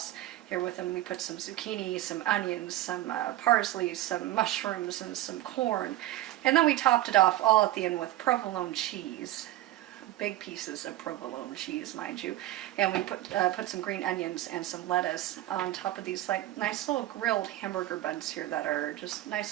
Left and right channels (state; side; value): quieter; left; 15.2 dB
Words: Here with them we put some zucchini, some onions, some parsley, some mushrooms, and some corn. And then we topped it off all at the end with provolone cheese. Big pieces of provolone cheese, mind you. And we put some green onions and some lettuce on top of these like nice little grilled hamburger buns here that are just